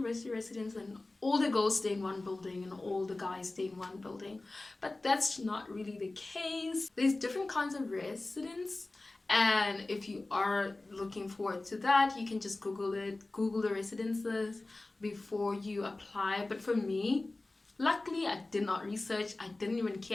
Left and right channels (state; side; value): quieter; right; 3.0 dB